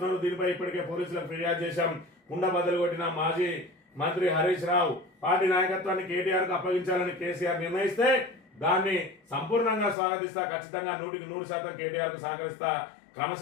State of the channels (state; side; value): drops out; right; at 10.0 s